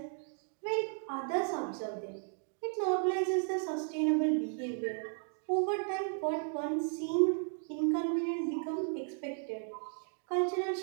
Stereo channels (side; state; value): left; silent; 55 dB below the other